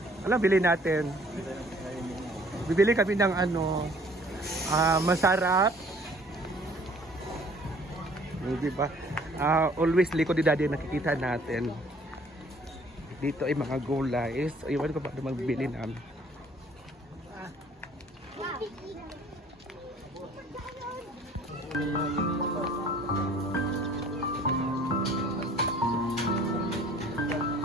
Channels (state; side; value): normal; both; correlation 0.55